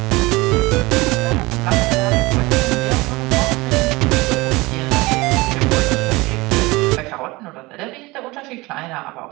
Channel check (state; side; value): quieter; left; 22.3 dB